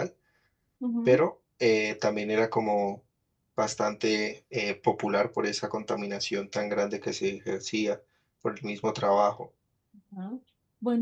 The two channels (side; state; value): both; identical; correlation 1.00